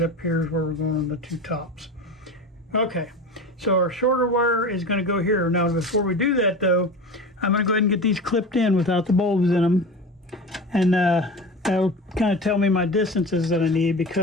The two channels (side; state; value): both; normal; correlation 0.30